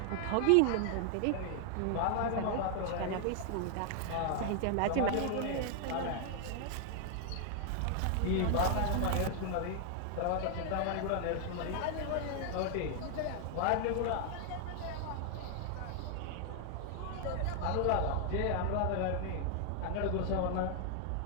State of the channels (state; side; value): different; both; correlation 0.00